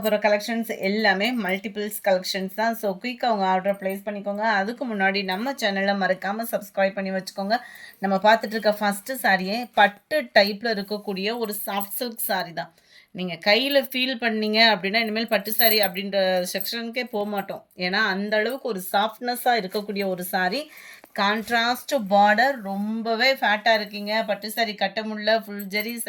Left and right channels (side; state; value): both; identical; correlation 1.00